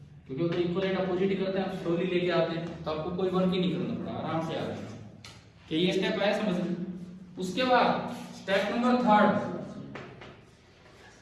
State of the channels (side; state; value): both; identical; correlation 1.00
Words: क्योंकि वो इक्वलेंट अपोजिट ही करते हैं, आप स्लोली लेके आते हैं तो आपको कोई वर्क ही नहीं करना पड़ा, आराम से आ रहा है। कि ये स्टेप आया समझ में। उसके बाद स्टेप नंबर थर्ड,